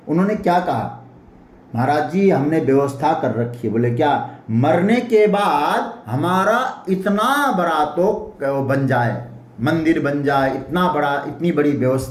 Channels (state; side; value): identical; both; correlation 1.00